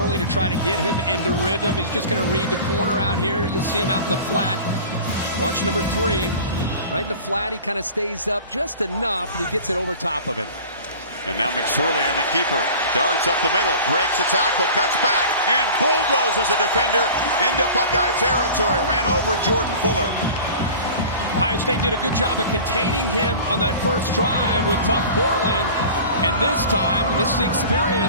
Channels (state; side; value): inverted; both; correlation -0.39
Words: to try to get him into rhythm. He's just going to read the corner out here. You'll see him out in the flat. Watch number 3. Right in the flat, he kind of stays up just enough, and he gets it over top of him. And now McSorley on the keeper. Darts up the middle, breaks a tackle, cuts back, and bulldozes a defender into Buckeye territory. Ran over Jordan Fuller. Ohio State did a good job of containing him on that first drive with Tough Portland. And this time, and this is the